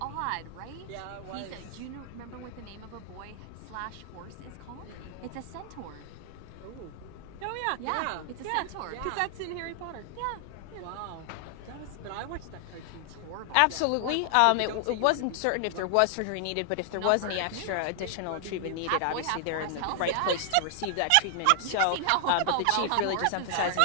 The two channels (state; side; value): different; both; correlation 0.00